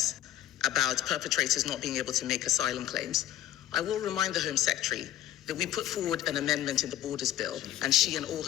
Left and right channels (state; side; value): quieter; right; 12.7 dB